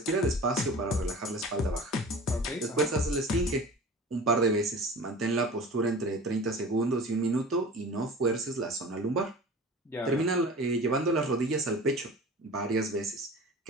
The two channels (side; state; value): both; normal; correlation 0.38